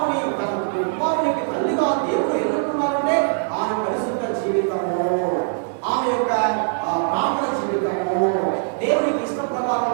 తన కుమారునికి తల్లిగా దేవుడు ఎన్నుకున్నారంటే ఆమె పరిశుద్ధ జీవితము, ఆమె యొక్క ప్రార్థన జీవితము దేవునికి ఇష్ట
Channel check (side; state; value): left; silent; 63 dB below the other